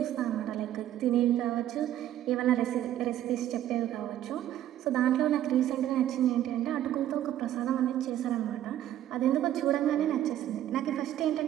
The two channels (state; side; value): quieter; left; 12.2 dB